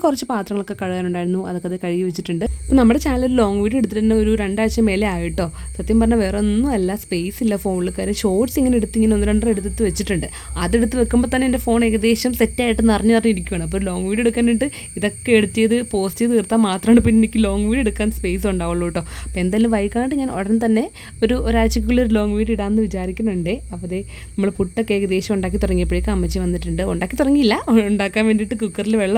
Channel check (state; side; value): identical; both; correlation 1.00